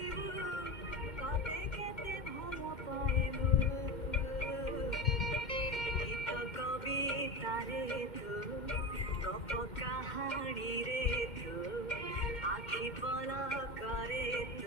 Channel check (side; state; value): right; late; 2.1 ms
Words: কতে কেতে ভাল পাইবু গীত কবিতারে তু গপ কাহাণীরে তু আখি পলকরে